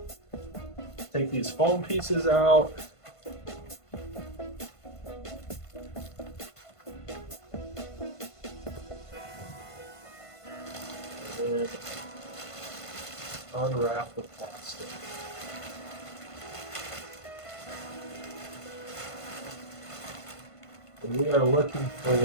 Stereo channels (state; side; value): late; right; 1.5 ms